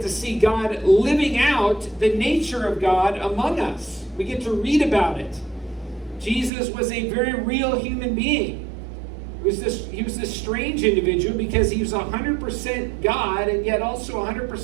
to see God living out the nature of God among us. We get to read about it. Jesus was a very real human being. He was this strange individual because he was 100% God and yet also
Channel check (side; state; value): left; drops out; at 6.5 s